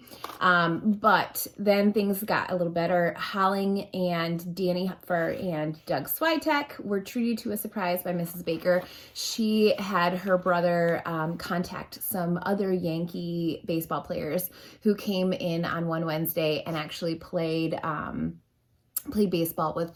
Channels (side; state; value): both; identical; correlation 1.00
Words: But then things got a little better. Holling and Danny Hupfer and Doug Switek were treated to a surprise by Mrs. Baker. She had her brother contact some other Yankee baseball players who came in on one Wednesday and actually played baseball with